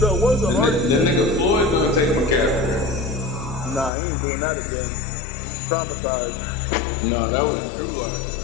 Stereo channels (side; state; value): right; drops out; at 3.9 s